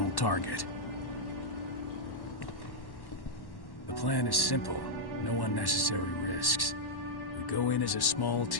target. The plan is simple. No unnecessary risks. We go in as a small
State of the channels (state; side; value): late; right; 1.1 ms